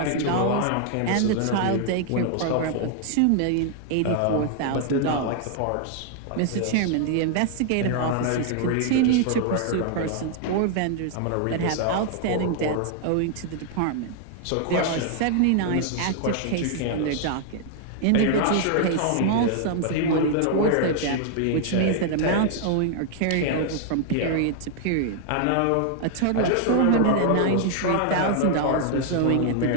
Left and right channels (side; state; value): both; different; correlation 0.00